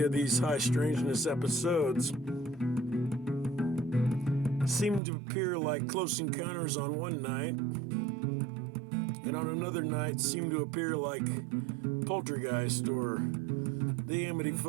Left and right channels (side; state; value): left; drops out; at 5.0 s